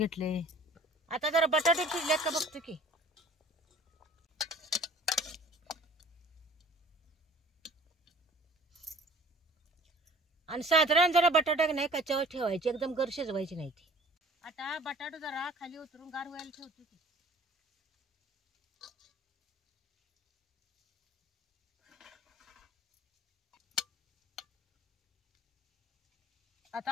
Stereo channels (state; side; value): normal; both; correlation 0.50